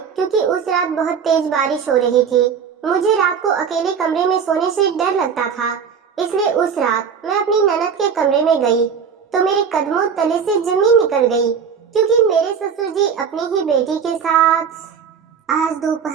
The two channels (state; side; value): quieter; left; 6.8 dB